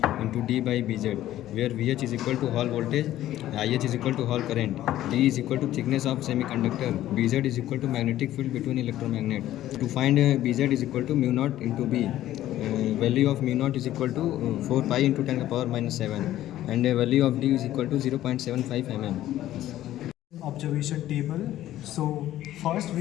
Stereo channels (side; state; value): right; quieter; 13.5 dB